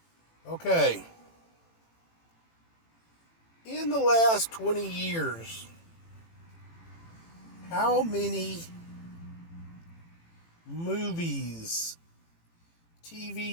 Okay. In the last 20 years, how many movies,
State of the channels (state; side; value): late; right; 18 ms